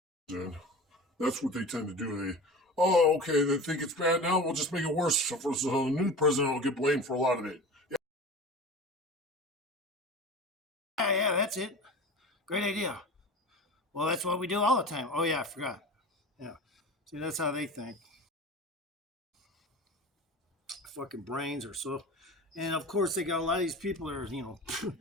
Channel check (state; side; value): normal; both; correlation 0.34